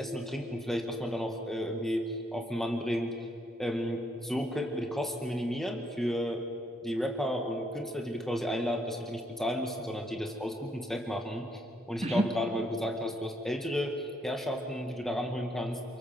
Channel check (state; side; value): normal; both; correlation 0.73